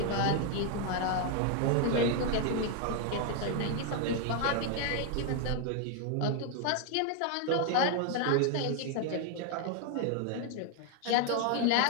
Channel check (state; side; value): different; both; correlation 0.00